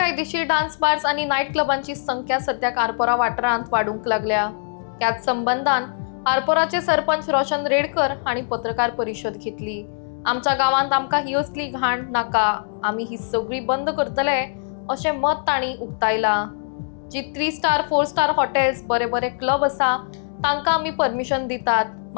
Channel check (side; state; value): right; silent; digital silence